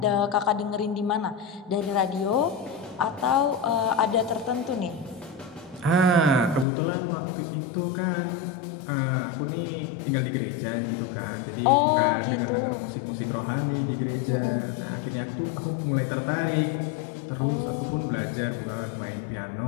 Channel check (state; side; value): drops out; right; at 6.7 s